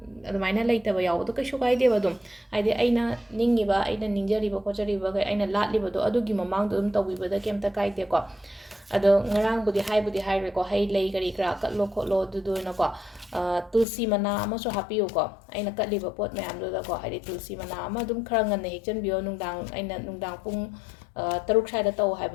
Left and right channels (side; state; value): right; drops out; at 13.9 s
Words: adumana laitaba yaawdo kaisu kaideba dum haidi aina ningiba aina ningjariba khochariba ga aina latliba do adugi mamang dum tawibada kemta kaide ko ado ngarang budi haire ko hai lei gari kra katlo kholo du na ko tulsi mana ama so happy ko aina katliba pot mayam do da ko haidi tulsi mana ama dum khara ngan ne hekchan bio nungdang aina nungdang pung taruk saida taw